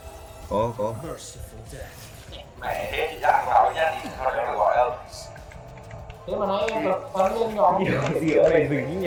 Có. Mẹ thế thì chắc vào nha, thì thôi đừng gọi đâu. mà nãy em tập bắn lên nhỏ Gì ở đây dừng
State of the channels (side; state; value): both; identical; correlation 1.00